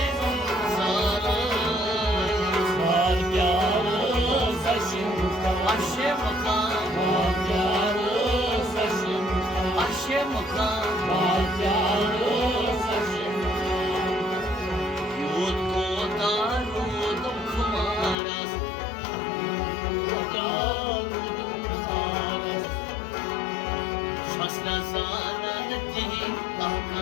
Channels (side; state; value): right; drops out; at 18.2 s